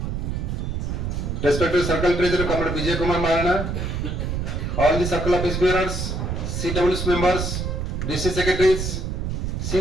respected Circle Treasurer, Comrade Vijay Kumar Marana, all the Circle Office Bearers, CWS members, DC Secretaries,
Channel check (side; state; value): right; noise; rumble, 2 dB below the sound